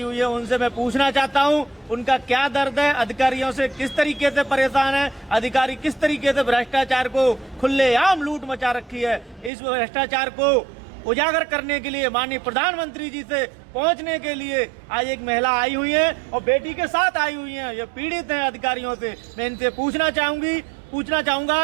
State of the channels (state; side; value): drops out; left; at 9.5 s